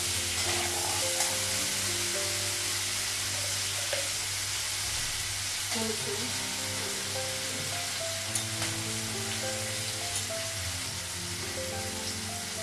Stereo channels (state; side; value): identical; both; correlation 1.00